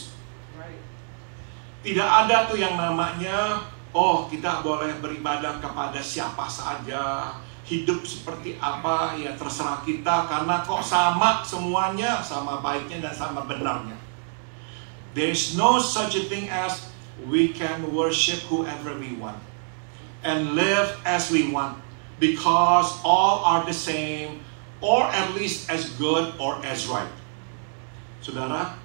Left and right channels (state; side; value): silent; left; 61 dB below the other